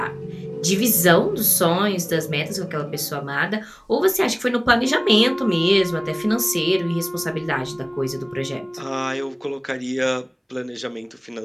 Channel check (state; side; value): identical; both; correlation 1.00